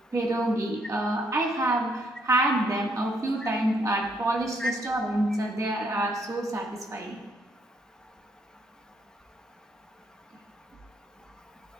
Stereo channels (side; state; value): both; normal; correlation 0.72